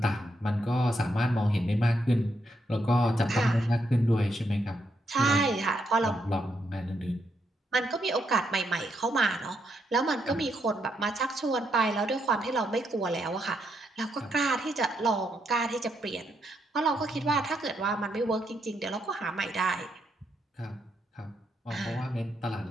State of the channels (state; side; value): normal; both; correlation 0.79